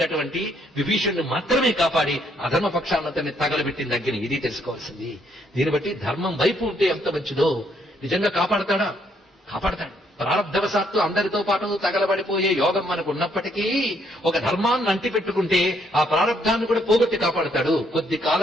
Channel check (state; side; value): normal; both; correlation 0.70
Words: విభీషణుని మాత్రమే కాపాడి అధర్మపక్షాన్నంతని తగలబెట్టింది అగ్ని. ఇది తెలుసుకోవాల్సింది. దీన్ని బట్టి ధర్మం వైపు ఉంటే ఎంత మంచిదో. నిజంగా కాపాడతాడా? కాపాడతాడు. ప్రారంధవశాత్తు అందరితో పాటు తగలబడిపోయే యోగం మనకు ఉన్నప్పటికీ ఒక ధర్మాన్ని అంటిపెట్టుకుంటే ఆ ప్రారంధాన్ని కూడా పోగొట్టి కాపాడతాడు. కొద్ది